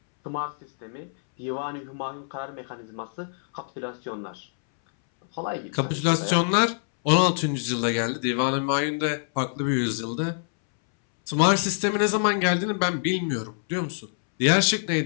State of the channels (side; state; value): right; silent; 61 dB below the other